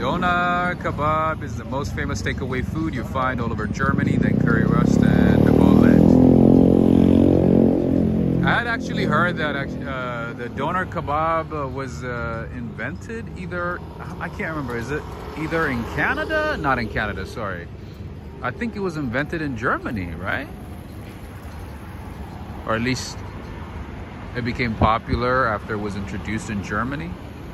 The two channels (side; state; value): both; identical; correlation 1.00